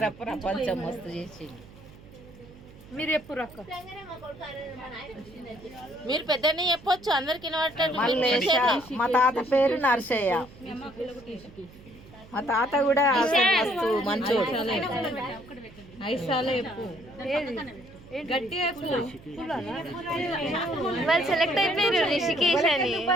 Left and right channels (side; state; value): right; noise; hum, 21 dB below the sound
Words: ప్రపంచం మస్తు చేసిండు. మీరు ఎప్పుడు అక్క మీరు పెద్దనే చెప్పొచ్చు అందరికి వినబడటట్టు. మల్లేశ. మా తాత పేరు నర్సయ్య. మా తాత కూడా మస్తు మంచోడు. ఐసాలే చెప్పు గట్టిగా వాళ్ళు సెలెక్ట్ అయిపోయారు రిషికేష్ అని.